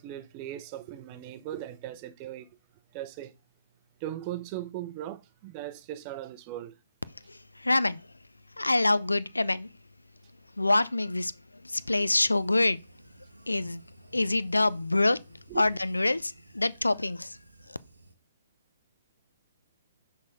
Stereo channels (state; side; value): inverted; both; correlation -0.94